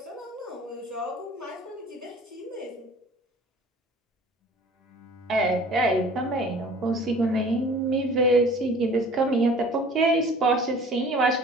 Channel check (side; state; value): both; normal; correlation 0.47